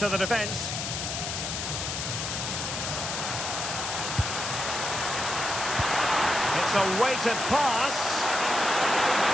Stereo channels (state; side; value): noise; left; hiss, 3 dB below the sound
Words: the defence. It's a weighted pass.